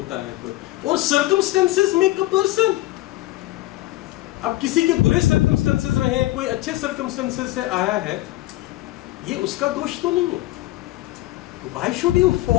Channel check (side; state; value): right; quieter; 17.4 dB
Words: है कोई. और सर्कमस्टेंसेस मेक अ पर्सन. अब किसी के बुरे सर्कमस्टेंसेस रहे, कोई अच्छे सर्कमस्टेंसेस से आया है, ये उसका दोष तो नहीं है. Why should you